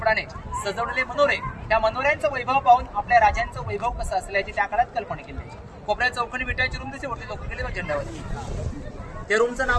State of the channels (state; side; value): identical; both; correlation 1.00